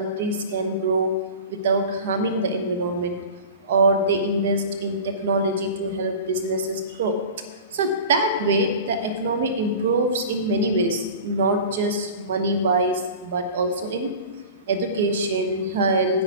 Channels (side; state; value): both; inverted; correlation -0.36